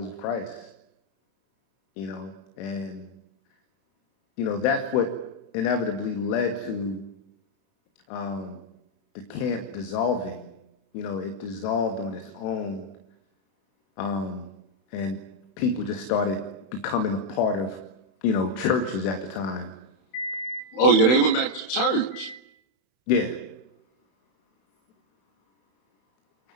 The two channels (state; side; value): late; right; 31 ms